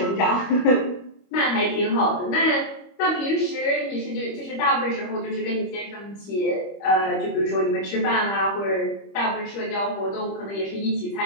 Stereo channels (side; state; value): right; late; 25 ms